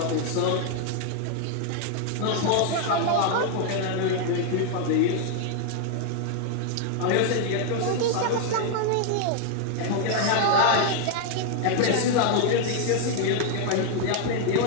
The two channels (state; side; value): different; both; correlation 0.00